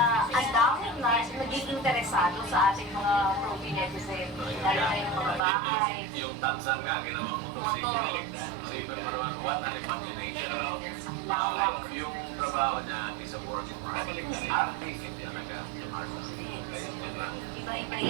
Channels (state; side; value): drops out; left; at 5.4 s